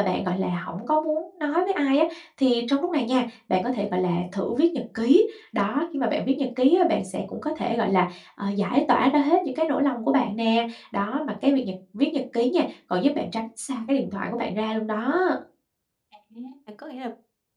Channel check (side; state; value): both; identical; correlation 1.00